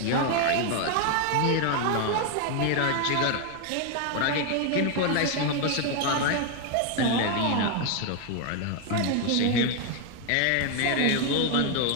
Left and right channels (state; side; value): different; both; correlation 0.01